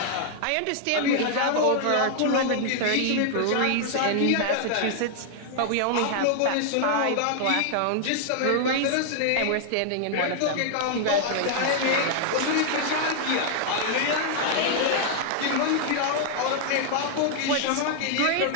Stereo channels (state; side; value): different; both; correlation 0.00